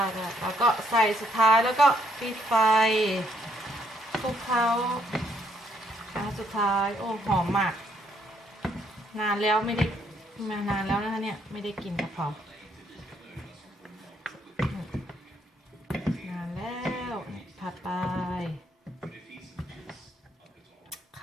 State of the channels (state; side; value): normal; both; correlation 0.70